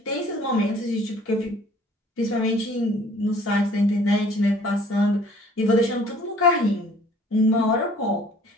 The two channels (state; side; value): normal; both; correlation 0.54